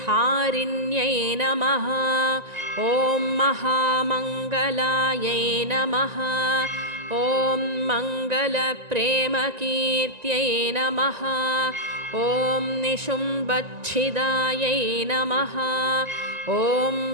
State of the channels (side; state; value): left; late; 1.9 ms